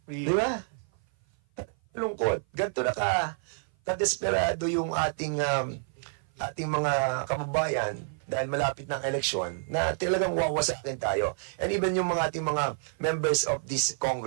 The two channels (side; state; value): left; silent; 55 dB below the other